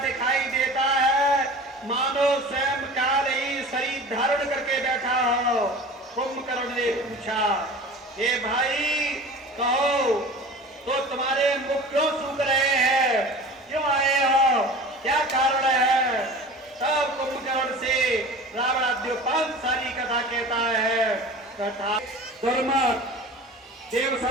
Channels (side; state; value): both; normal; correlation 0.38